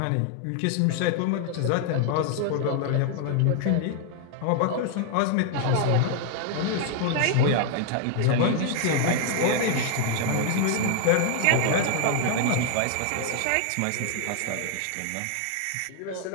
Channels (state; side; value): different; both; correlation 0.00